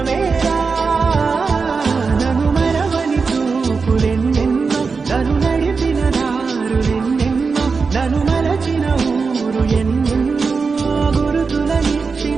నన్ను మరవని చూపులెన్నెన్నో నన్ను నడిపిన దారులెన్నెన్నో నన్ను మరచిన ఊరు ఎన్నెన్నో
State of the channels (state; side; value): quieter; left; 4.8 dB